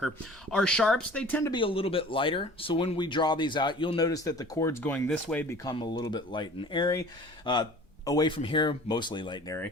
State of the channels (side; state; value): both; normal; correlation 0.45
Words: Our sharps, they tend to be a little bit lighter. So when we draw these out, you'll notice that the chords going this way become a little bit light and airy. Away from here, mostly light and airy.